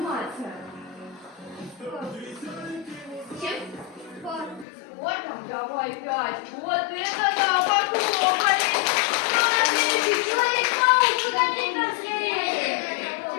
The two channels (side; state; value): right; drops out; at 4.7 s